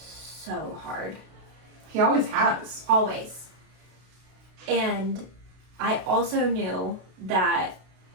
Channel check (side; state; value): left; late; 32 ms